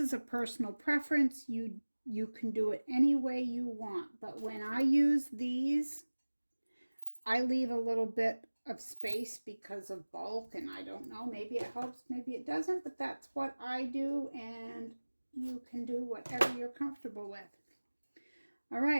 a personal preference. You can do it any way you want, but when I use these, I leave a little bit of space because of bulk, and I don't know, maybe it helps, maybe it doesn't, but that's what I do, and you can do whatever you're comfortable with. All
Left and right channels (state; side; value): inverted; both; correlation -1.00